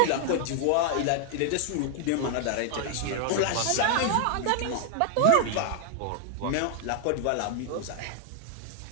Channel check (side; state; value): both; different; correlation 0.00